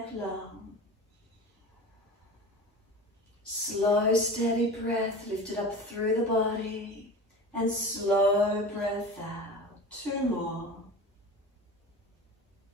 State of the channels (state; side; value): normal; both; correlation 0.34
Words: long. Slow, steady breath, lift it up through the body. And slow breath out. 2 more.